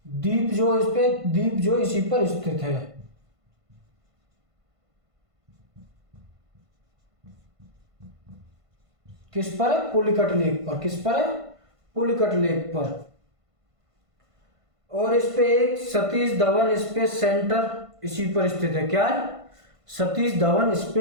द्वीप जो, इस पे द्वीप जो इसी पर स्थित है। किस पर है, पुलिकट लेक पर। किस पर है, पुलिकट लेक पर। और इस पे एक सतीश धवन स्पेस सेंटर इसी पर स्थित है। क्या है, सतीश धवन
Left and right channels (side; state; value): left; late; 1.5 ms